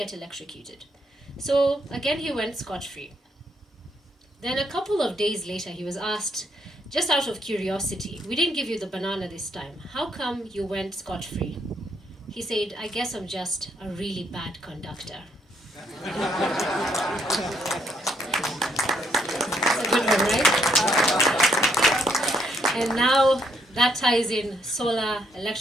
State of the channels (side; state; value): both; normal; correlation 0.72